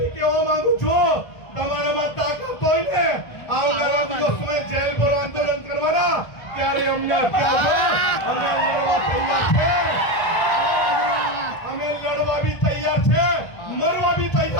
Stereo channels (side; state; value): right; late; 1.5 ms